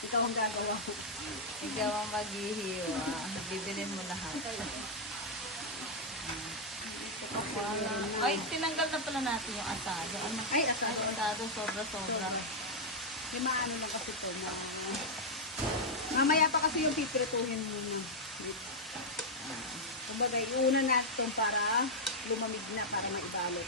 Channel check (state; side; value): normal; both; correlation -0.02